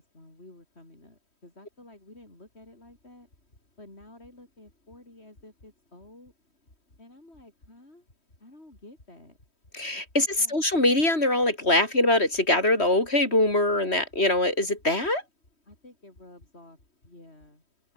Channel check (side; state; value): right; late; 3.1 ms